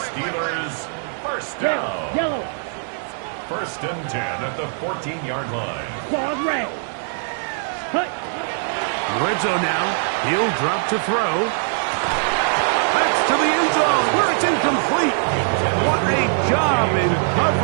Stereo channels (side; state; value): left; silent; 63 dB below the other